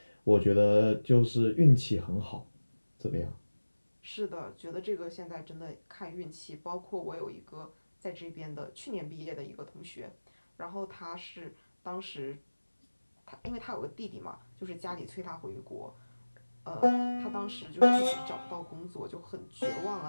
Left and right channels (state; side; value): inverted; both; correlation -1.00